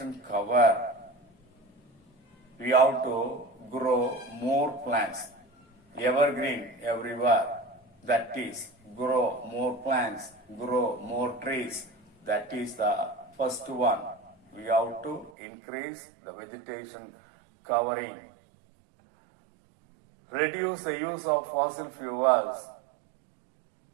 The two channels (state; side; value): drops out; left; at 15.3 s